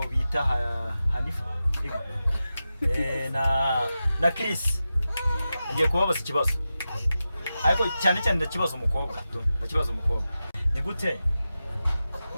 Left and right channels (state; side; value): inverted; both; correlation -0.92